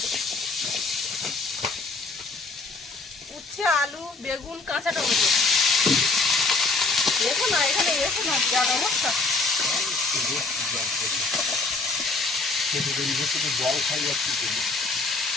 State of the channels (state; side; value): quieter; right; 3.7 dB